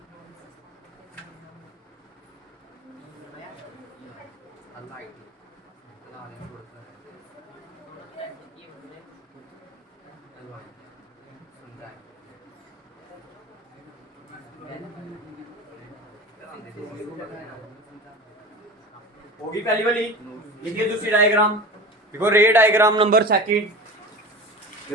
होगी पहली वाली। लिखिए दूसरी डायग्राम, देखो रे डायग्राम नंबर सेकंड,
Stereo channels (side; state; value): both; normal; correlation 0.33